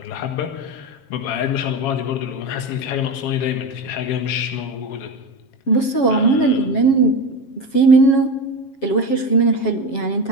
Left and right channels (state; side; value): late; right; 7.3 ms